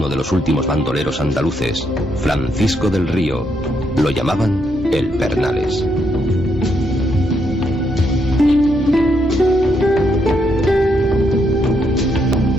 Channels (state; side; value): normal; both; correlation 0.77